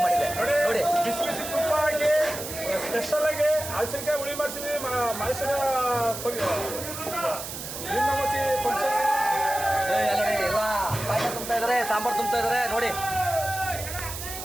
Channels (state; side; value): noise; right; hiss, 8 dB below the sound